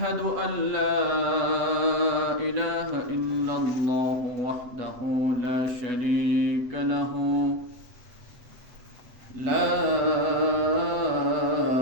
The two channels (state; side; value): late; left; 8.1 ms